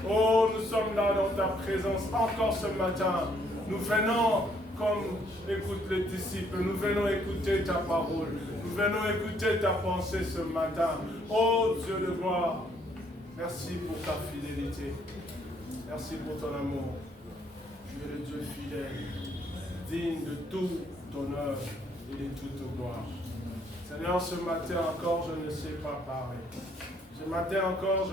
Oh, nous sommes là dans ta présence encore ce matin. Nous venons, comme écoutent les disciples, nous venons écouter ta parole. Nous venons écouter ta pensée ce matin. Oh Dieu de gloire, merci pour ta fidélité. Merci pour ton amour. Tu es le Dieu fidèle, digne de tout honneur et de toute gloire. Seigneur, ce matin encore, je ne sais pas parler. Ce matin encore,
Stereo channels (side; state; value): both; normal; correlation 0.67